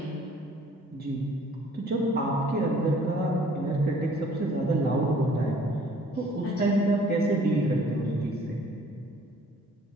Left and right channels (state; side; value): normal; both; correlation 0.56